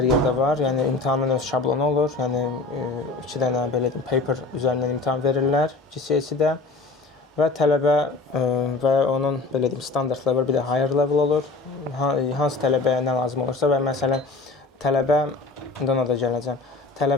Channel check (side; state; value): right; quieter; 3.5 dB